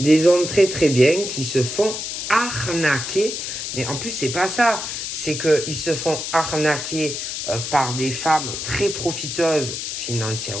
hommes très très bien qui se font arnaquer. Mais en plus, c'est pas ça. C'est qu'ils se font arnaquer par des femmes très profiteuses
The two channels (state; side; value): noise; left; hiss, 5 dB below the sound